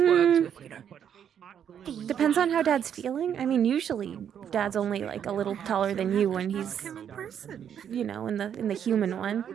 worked with, you know. depends on how Dad's feeling. I mean, usually Dad's only like a little taller than you when he's, Him in person. you know, in the human one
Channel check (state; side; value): quieter; left; 8.8 dB